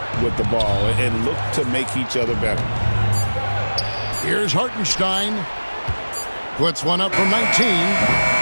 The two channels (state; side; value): inverted; both; correlation -1.00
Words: with the ball and look to make each other better. Here's Hartenstein. Puts one up from 19.